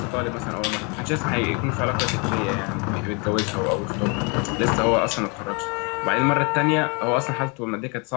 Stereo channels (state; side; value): quieter; right; 32.7 dB